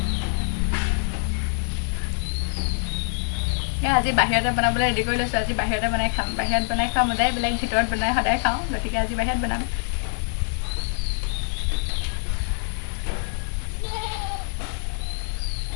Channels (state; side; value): silent; right; 62 dB below the other